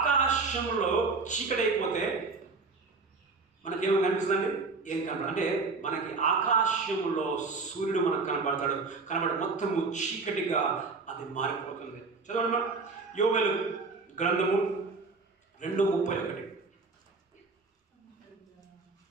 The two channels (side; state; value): left; quieter; 4.1 dB